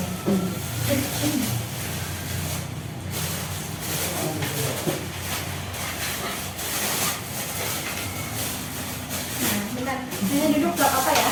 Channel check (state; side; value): identical; both; correlation 1.00